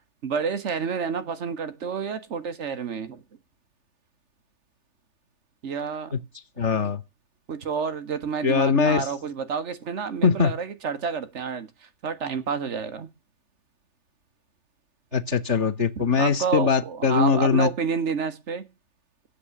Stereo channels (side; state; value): left; late; 3.4 ms